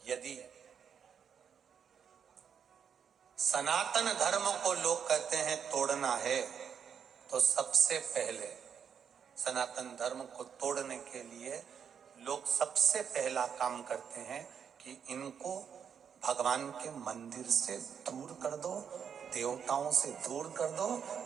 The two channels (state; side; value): quieter; left; 7.5 dB